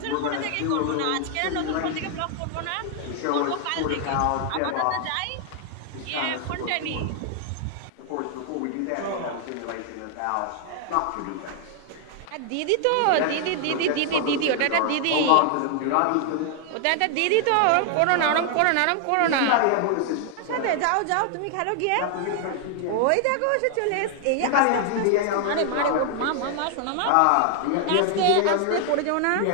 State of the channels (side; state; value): both; different; correlation 0.00